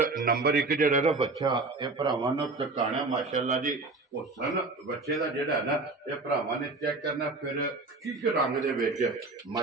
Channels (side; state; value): left; quieter; 3.5 dB